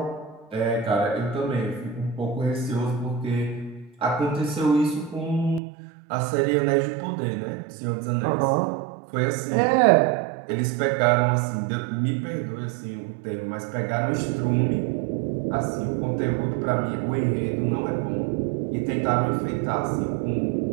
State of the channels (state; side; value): drops out; left; at 5.6 s